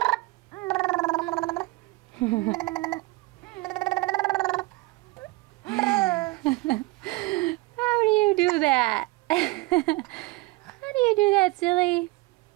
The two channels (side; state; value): left; quieter; 22.5 dB